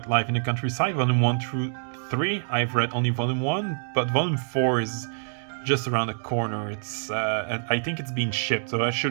life in the countryside, Volume 1 through 3. I've read only Volume 1, but Volume 4 is just around the corner. I think it's being shipped, so I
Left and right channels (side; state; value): left; silent; digital silence